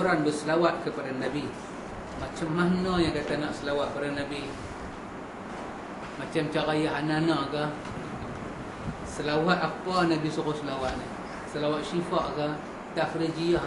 berselawat kepada Nabi. Macam mana yang kata nak selawat kepada Nabi? Macam cara ya Hanana ke? Selawat apa Nabi suruh selawat ni? Selawat syifa ke? Tafrijiyah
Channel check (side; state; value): both; identical; correlation 1.00